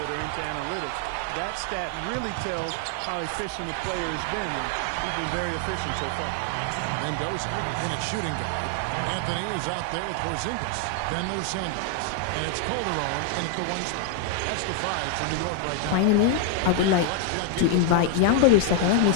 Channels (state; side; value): different; both; correlation 0.00